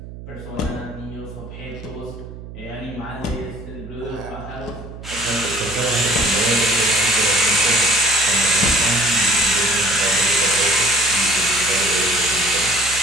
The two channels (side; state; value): right; noise; hum, 13 dB below the sound